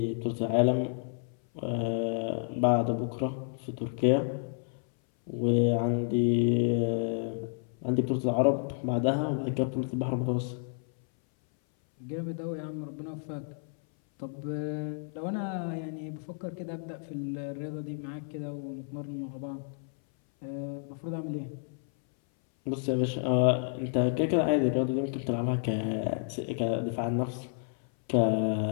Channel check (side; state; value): right; silent; 57 dB below the other